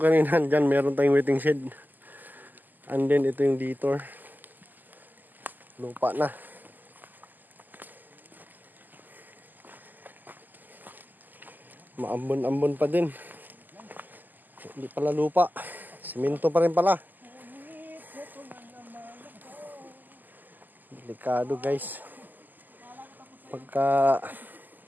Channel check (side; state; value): left; late; 0.086 ms